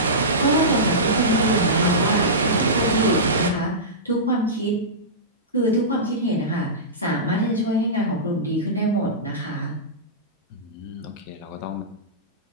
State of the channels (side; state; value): both; normal; correlation -0.18